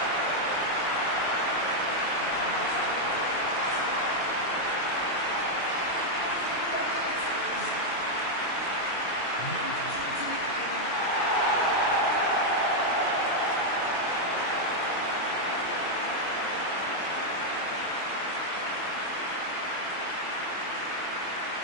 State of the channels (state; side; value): late; right; 23 ms